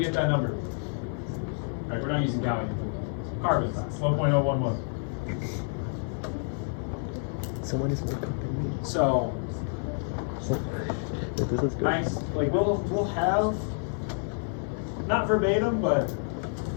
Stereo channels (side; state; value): right; silent; 59 dB below the other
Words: get that number. All right, we're not using gallium. Carbon, 1.011. Someone is more than me. So, This is good. nice. Like we'll have not verbatim, but